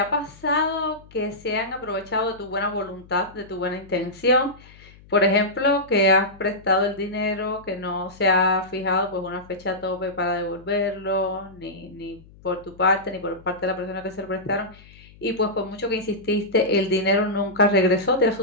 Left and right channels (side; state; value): left; noise; hum, 23 dB below the sound